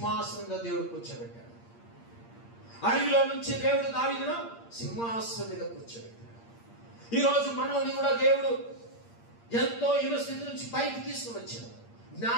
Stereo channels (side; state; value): right; late; 8.6 ms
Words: దేవుడు కూర్చోబెట్టాడు. అడవిలో నుంచి దేవుడు దావీదును సింహాసనం మీద కూర్చోబెట్టాడు. ఈ రోజు మనల్ని కూడా దేవుడు ఎంతో హీన స్థితి నుంచి పైకి తీసుకుని వచ్చాడు.